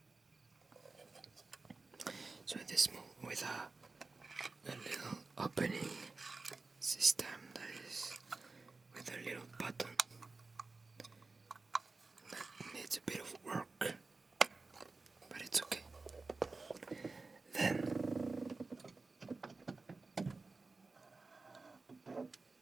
So this with a little opening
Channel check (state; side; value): quieter; left; 3.8 dB